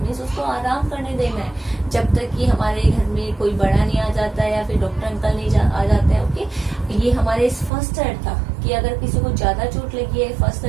मीन्स उसको आराम करने देना है जब तक कि हमारे घर में कोई बड़ा नहीं आ जाता है या फिर डॉक्टर अंकल नहीं आ जाते हैं। ओके, ये हमारे इस फर्स्ट एड था कि अगर किसी को ज्यादा चोट लगी है, फर्स्ट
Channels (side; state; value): left; drops out; at 7.7 s